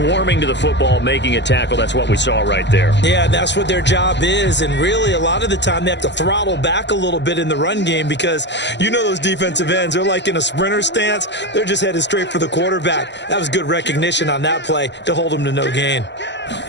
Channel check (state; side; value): late; right; 0.52 ms